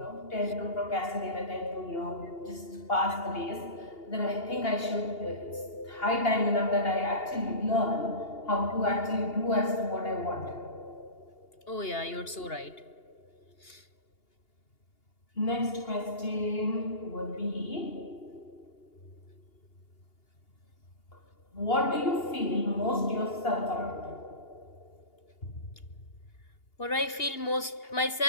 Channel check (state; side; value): late; right; 2.8 ms